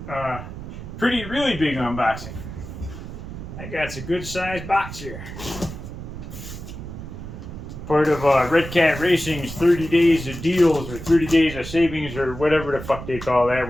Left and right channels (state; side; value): noise; right; rumble, 10 dB below the sound